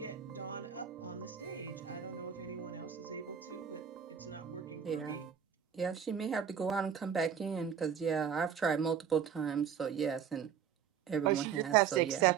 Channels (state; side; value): quieter; left; 7.9 dB